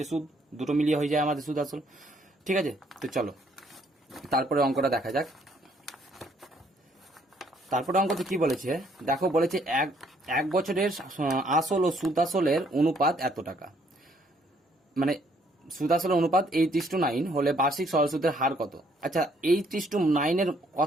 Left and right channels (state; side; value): normal; both; correlation 0.66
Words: সুদ, দুটো মিলিয়ে হয়ে যায় আমাদের সুদ আসল, ঠিক আছে। তো চলো তারপরে অঙ্কটা দেখা যাক। তারপরে অঙ্কতে কি বলেছে দেখো, বলেছে এক বছরের আসল ও সুদ আসলের অনুপাত এত টাকা, মানে সুদ আসলের অনুপাত 8:9 হলে বার্ষিক সরল সুদের হার কত। আচ্ছা, 8:9 এর